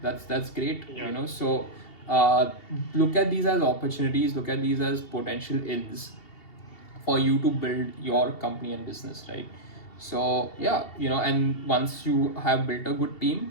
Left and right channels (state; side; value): late; right; 2.7 ms